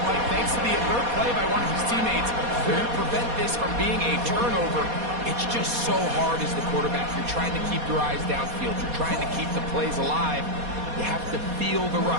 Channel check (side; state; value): left; late; 4.2 ms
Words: Mike, thanks to the alert play by one of his teammates, they're going to prevent this from being a turnover. It's just so hard as the quarterback. You're trying to keep your eyes downfield. You're trying to keep the plays alive. You have to feel the